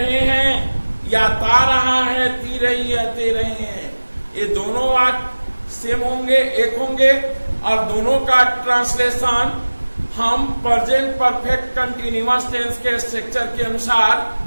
हैं, या ता रहा है, ती रही है, ते रहे हैं, ये दोनों वाक्य सेम होंगे, एक होंगे, और दोनों का ट्रांसलेशन हम प्रेजेंट परफेक्ट कंटीन्यूअस टेंस के स्ट्रक्चर के अनुसार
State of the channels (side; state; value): both; inverted; correlation -1.00